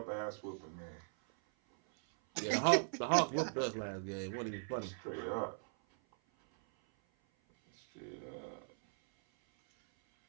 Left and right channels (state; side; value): silent; left; 52 dB below the other